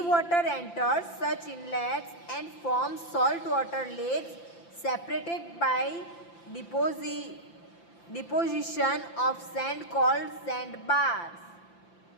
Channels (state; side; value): late; right; 5.9 ms